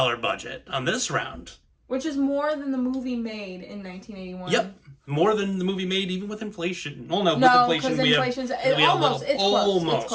on this round. Which is more than the movie made in 1981. Yep. More than the movie made even with inflation. Well, no, with inflation we have almost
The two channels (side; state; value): both; identical; correlation 1.00